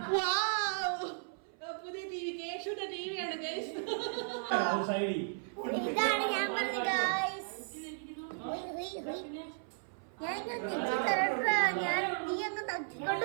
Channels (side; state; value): left; silent; 54 dB below the other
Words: പുതിയ ടിവി കേശുന്റെ ടിവിയാണ് ഗൈസ്. ഇതാണ് ഞാൻ പറഞ്ഞ ഗൈസ്. ഞാൻ നീ അങ്ങ്